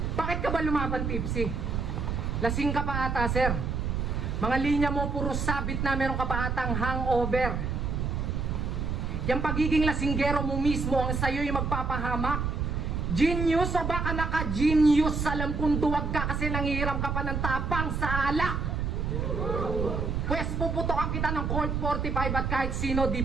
bakit ka ba lumaban, Tipsy? Lasing ka pa ata, sir. Mga linya mo puro sabit na meron ka pa atang hangover. Yung pagiging lasinggero mo mismo ang sa'yo yung magpapahamak. Genius o baka naka-genius? Alam kong duwag ka kasi nangihiram ka pa ng tapang sa alak. Pwes puputokan kita ng Colt 45 at kahit sino di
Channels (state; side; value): noise; right; rumble, 1 dB below the sound